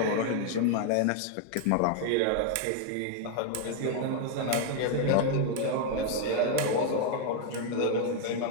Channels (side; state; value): both; different; correlation 0.00